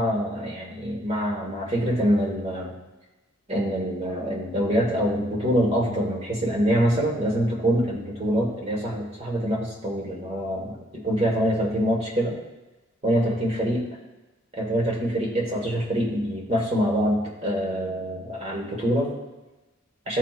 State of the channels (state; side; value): normal; both; correlation 0.68